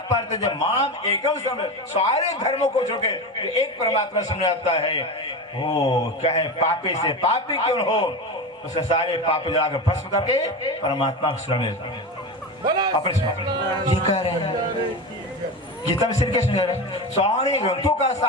जब माम एकम समय, सारे धर्मों को छोड़ के एक परमात्मा समझ आता है। वो कहे पापी से पापी क्यों हो, उसे सारे पाप जलाकर भस्म करके परमात्मा को शरण लेता है। अपने ये कह रहे हैं गीता में श्री कृष्ण कह रहे हैं सारे ग्रंथों का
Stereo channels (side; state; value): both; normal; correlation 0.23